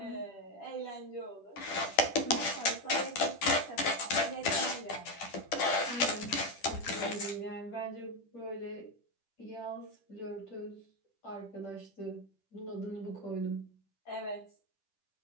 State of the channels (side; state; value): right; late; 10 ms